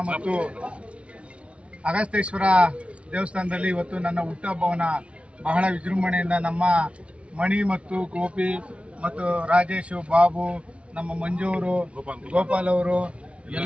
ಮತ್ತು ಅಗಸ್ತೇಶ್ವರ ದೇವಸ್ಥಾನದಲ್ಲಿ ಇವತ್ತು ನನ್ನ ಹುಟ್ಟುಹಬ್ಬವನ್ನು ಬಹಳ ವಿಜೃಂಭಣೆಯಿಂದ ನಮ್ಮ ಮಣಿ ಮತ್ತು ಗೋಪಿ ಮತ್ತು ರಾಜೇಶು ಬಾಬು ನಮ್ಮ ಮಂಜೂರು ಗೋಪಾಲ್ ಅವರು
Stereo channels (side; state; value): left; late; 0.061 ms